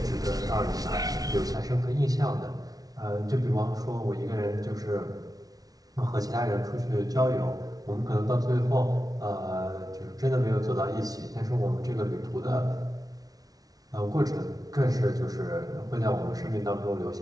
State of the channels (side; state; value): left; late; 0.18 ms